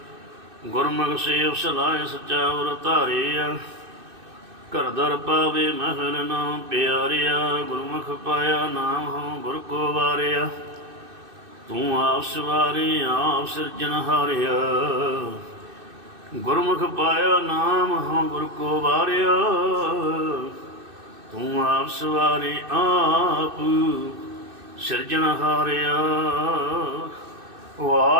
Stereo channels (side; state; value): left; late; 2.6 ms